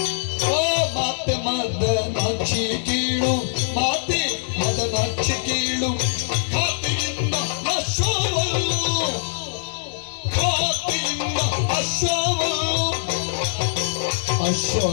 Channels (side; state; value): right; silent; digital silence